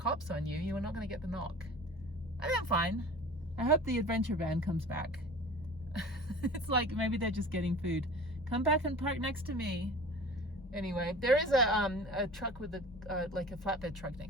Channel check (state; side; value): normal; both; correlation 0.40